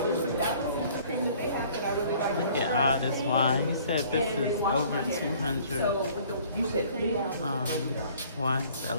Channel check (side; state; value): both; inverted; correlation -0.54